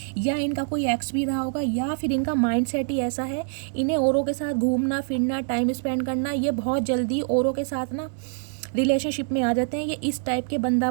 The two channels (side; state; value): left; silent; 62 dB below the other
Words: या इनका कोई एक्स भी रहा होगा, या फिर इनका माइंडसेट ही ऐसा है, इन्हें औरों के साथ घूमना फिरना, टाइम स्पेंड करना, ये बहुत जल्दी औरों के साथ ना रिलेशनशिप में आ जाते हैं। ये इस टाइप के बंदा